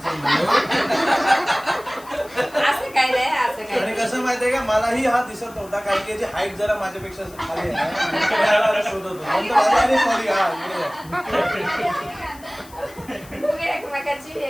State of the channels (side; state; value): left; noise; hiss, 22 dB below the sound